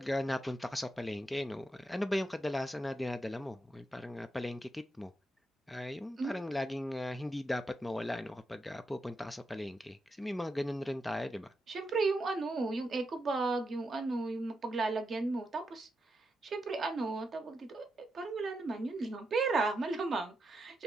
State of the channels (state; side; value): normal; both; correlation 0.85